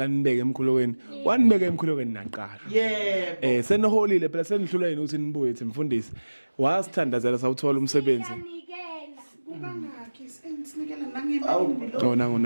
nibeke emkhulekweni. Wanibeke emkhulekweni naqasha. Yebo. Seniholile phela senihlula yini ukuthi nibuye ethi mfundisi. Wasithandazela sawuthola umsebenzi. Kangakhi sinikela nangemali.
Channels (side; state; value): both; inverted; correlation -1.00